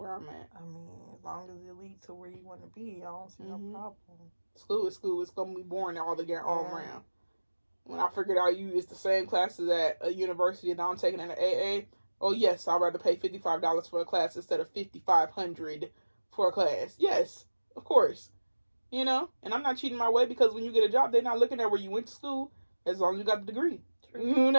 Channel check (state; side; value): inverted; both; correlation -1.00